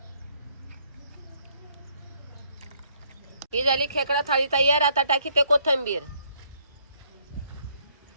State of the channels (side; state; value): both; inverted; correlation -0.68